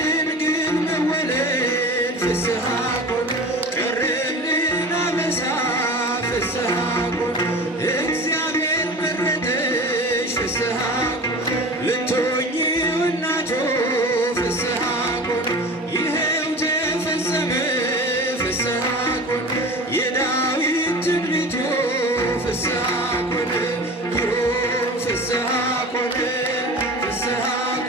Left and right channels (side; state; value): both; normal; correlation 0.35